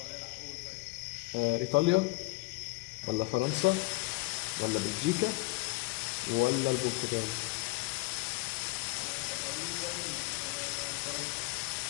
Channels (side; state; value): right; quieter; 24.1 dB